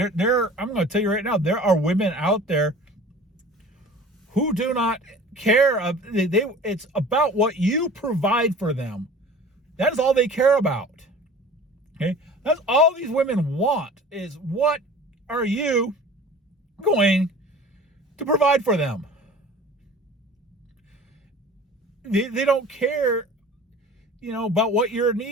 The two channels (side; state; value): both; normal; correlation 0.43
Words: I'm going to tell you right now, there are women out there who do not care. It's about what you provide for them. That is all they care about. Okay? That's all these women want, is what are you going to provide for them? They don't care, about what your